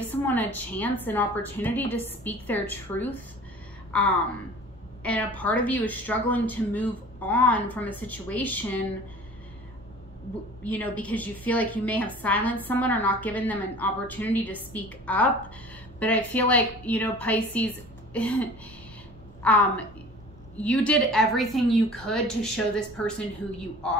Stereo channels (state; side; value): normal; both; correlation 0.43